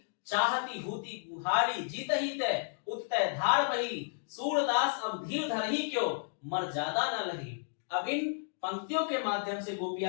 चाहती हूती गुहारी जीत ही तय उत्तय धार बही, सूरदास अब धीर धरही क्यों मर ज्यादा न लही। अब इन पंक्तियों के माध्यम से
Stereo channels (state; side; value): silent; right; digital silence